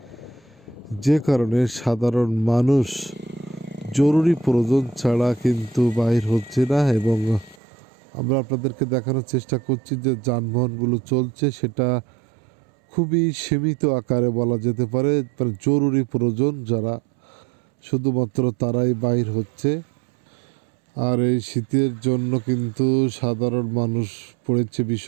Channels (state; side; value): drops out; left; at 7.6 s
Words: যে কারণে সাধারণ মানুষ জরুরি প্রয়োজন ছাড়া কিন্তু বাইর হচ্ছে না। এবং আমরা আপনাদেরকে দেখানোর চেষ্টা করছি যে যানবাহনগুলো চলছে সেটা খুবই সীমিত আকারে বলা যেতে পারে, জরুরি প্রয়োজন যারা শুধুমাত্র তারাই বাইর হচ্ছে। আর এই শীতের জন্য কিন্তু সাধারণ মানুষ পড়েছে